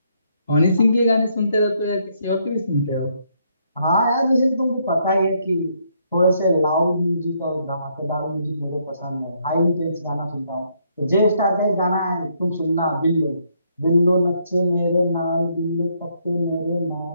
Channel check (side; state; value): both; inverted; correlation -0.73